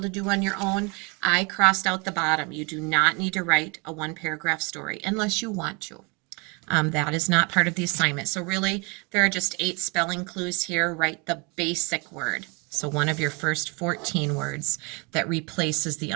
to do on your own. I crossed out the bottom. You do not need to write a 1-paragraph story unless you want to. That is not part of the assignment. So really, there are just 8 spelling clues here. Write the basic word. So one of your first 14 words that replaces the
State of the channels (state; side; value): quieter; left; 30.7 dB